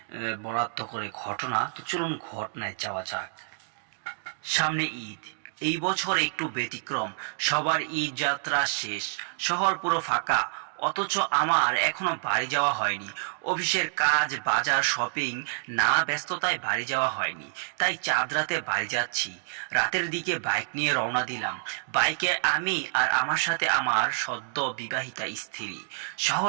বরাদ্দ করে ঘটনা। তো চলুন ঘটনায় যাওয়া যাক। সামনে ঈদ, এই বছর একটু ব্যতিক্রম। সবার ঈদ যাত্রা শেষ, শহর পুরো ফাঁকা, অথচ আমার এখনো বাড়ি যাওয়া হয়নি। অফিসের কাজ, বাজার, শপিং, নানা ব্যস্ততায় বাড়ি যাওয়া হয়নি। তাই চাঁদ রাতে বাড়ি যাচ্ছি। রাতের দিকে বাইক নিয়ে রওনা দিলাম। বাইকে আমি আর আমার সাথে আমার সদ্য বিবাহিতা স্ত্রী।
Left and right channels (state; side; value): silent; left; digital silence